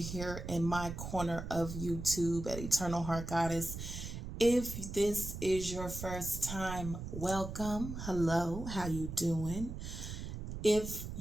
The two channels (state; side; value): noise; right; rumble, 7 dB below the sound